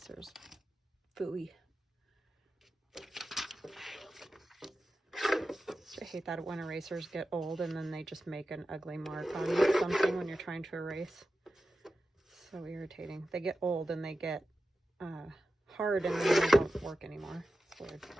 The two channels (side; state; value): both; normal; correlation 0.92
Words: Phooey. I hate that when erasers get old and then they just make an ugly mark on something when you're trying to erase. So irritating. They get old and they get hard and then they don't work anymore. It's weird.